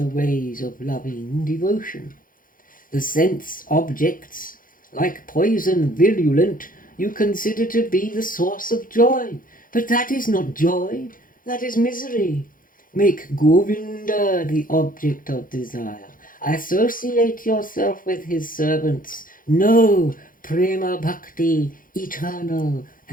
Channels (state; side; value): late; right; 0.40 ms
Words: ways of loving devotion. The sense objects, like poison virulent, you consider to be the source of joy, but that is not joy, that is misery. Make Govinda the object of desire. Associate yourself with his servants. Know Prema Bhakti, eternal